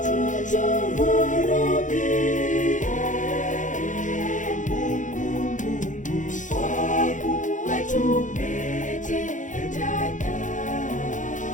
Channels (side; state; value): right; late; 0.37 ms